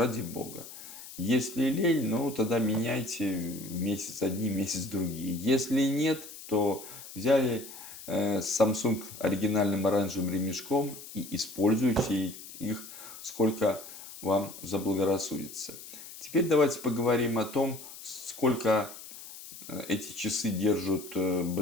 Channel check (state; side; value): noise; left; hiss, 14 dB below the sound